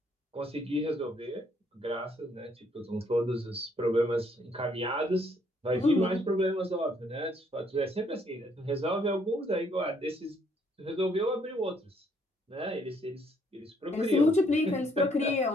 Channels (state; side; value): normal; both; correlation 0.68